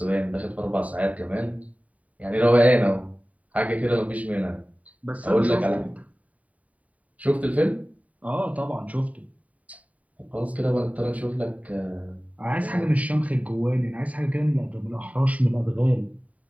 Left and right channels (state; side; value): late; left; 0.069 ms